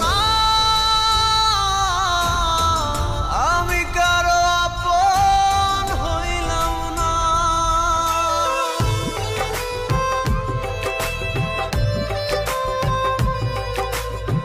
আমি কারো আপন হইলাম না।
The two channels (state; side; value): identical; both; correlation 1.00